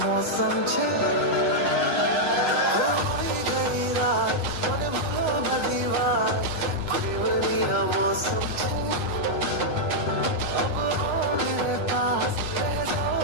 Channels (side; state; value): right; late; 9.8 ms